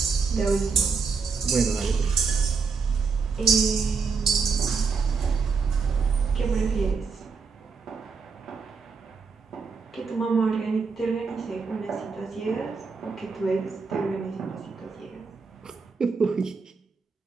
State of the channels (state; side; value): quieter; left; 5.1 dB